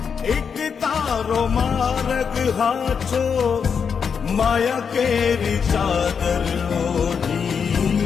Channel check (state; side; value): quieter; right; 6.5 dB